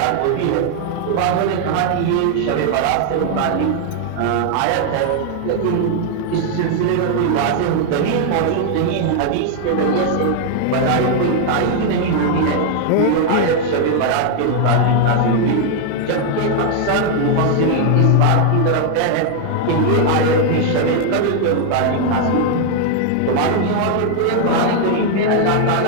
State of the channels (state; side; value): different; both; correlation 0.00